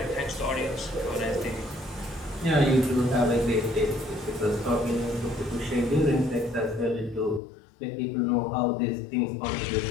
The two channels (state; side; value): drops out; right; at 7.4 s